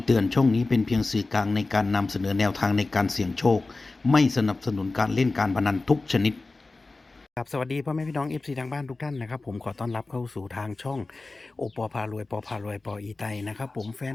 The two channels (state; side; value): quieter; right; 3.4 dB